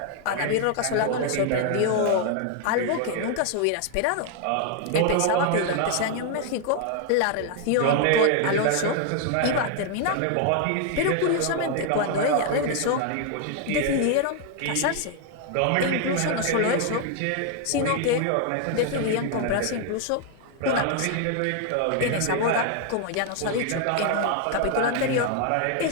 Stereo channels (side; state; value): both; different; correlation 0.00